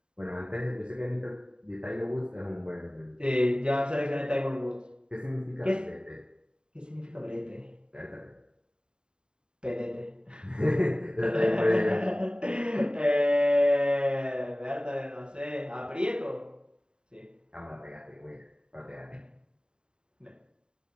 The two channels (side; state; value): left; late; 0.049 ms